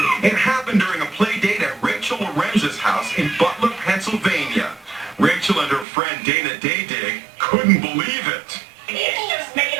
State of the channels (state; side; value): drops out; left; at 5.9 s